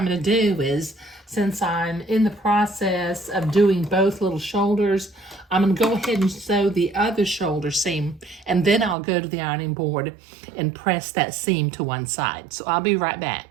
going to do is, since I'm in the process of doing both little shoulders, I'm going to go ahead and sew the other shoulder seam, and then I'll go to the ironing board and press that seam to one side. So I'll be right back.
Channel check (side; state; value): left; drops out; at 9.0 s